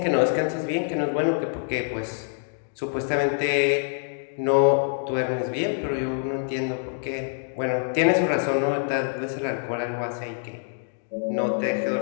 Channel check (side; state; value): right; silent; digital silence